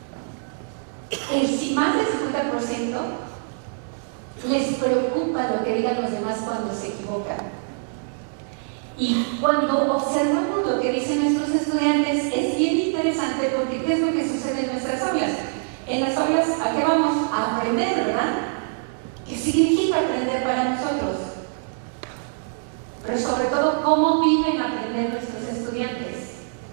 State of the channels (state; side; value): silent; left; digital silence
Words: más del 50% les preocupa lo que digan los demás cuando se equivocan. Y cuando observamos lo que dicen nuestros estudiantes, es bien interesante porque ¿qué es lo que sucede en nuestras aulas? En las aulas, ¿a qué vamos? A aprender, ¿verdad? ¿Qué significa aprender para nosotros? Pero sobre todo, ¿cómo viven aprender nuestros estudiantes?